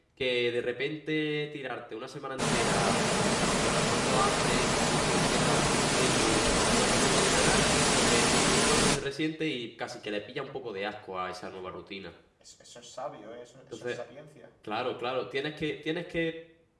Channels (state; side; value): identical; both; correlation 1.00